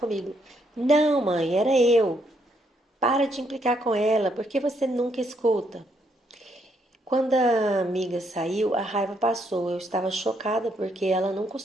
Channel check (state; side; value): normal; both; correlation 0.74